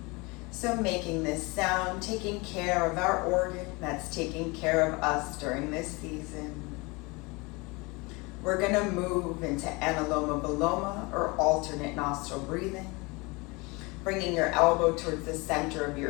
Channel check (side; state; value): right; quieter; 26.2 dB